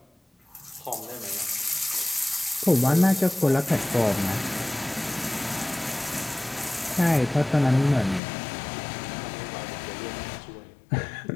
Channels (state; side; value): drops out; right; at 8.2 s